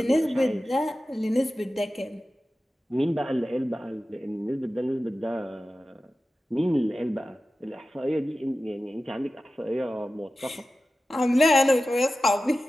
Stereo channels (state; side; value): normal; both; correlation 0.94